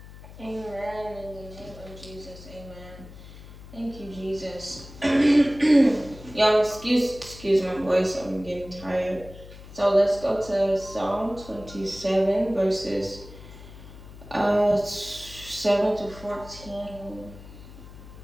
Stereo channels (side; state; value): left; noise; hum, 17 dB below the sound